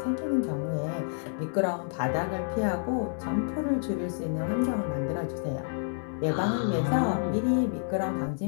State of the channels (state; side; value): silent; right; digital silence